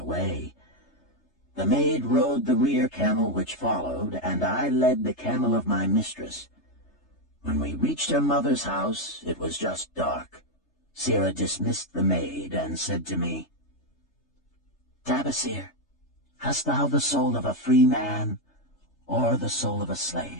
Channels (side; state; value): right; late; 3.3 ms